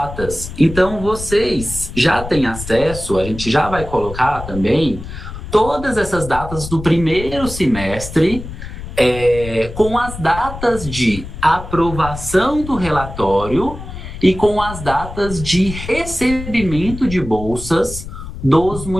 Então, vocês já têm acesso, a gente já vai colocar também, todas essas datas do primeiro semestre, com as datas de aprovação do relatório e com as datas de recebimento de bolsas dos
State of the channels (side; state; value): left; noise; rumble, 10 dB below the sound